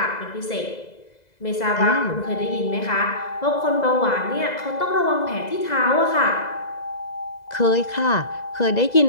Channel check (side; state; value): right; late; 2.0 ms